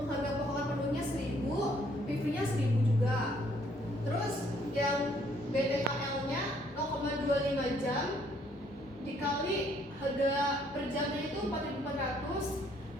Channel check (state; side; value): normal; both; correlation 0.65